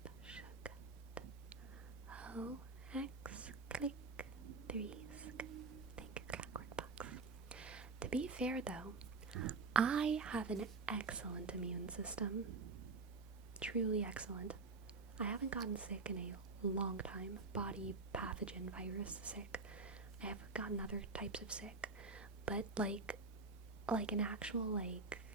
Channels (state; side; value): quieter; left; 4.1 dB